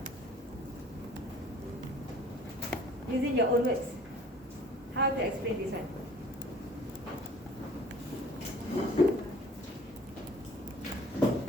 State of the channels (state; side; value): normal; both; correlation 0.51